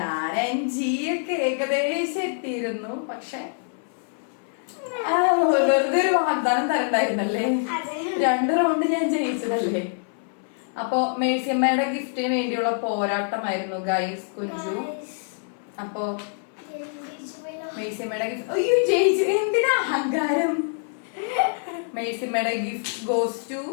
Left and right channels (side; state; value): right; silent; 62 dB below the other